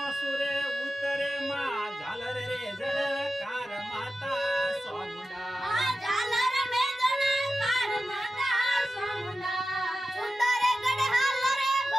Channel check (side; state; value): both; normal; correlation 0.93